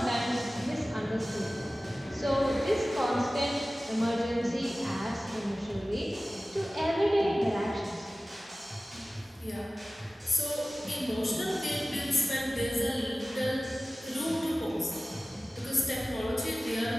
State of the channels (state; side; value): normal; both; correlation 0.97